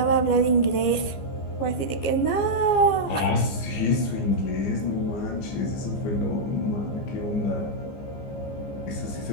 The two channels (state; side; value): late; right; 15 ms